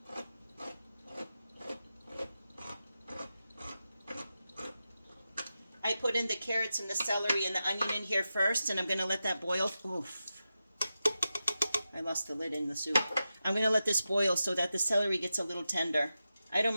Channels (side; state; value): both; inverted; correlation -0.91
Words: I put in the carrots and the celery and the onion in here first, and I'm going to let that boil. Oof. I lost the lid in the soup. I'm going to let this boil so that the celery gets a little tender. I don't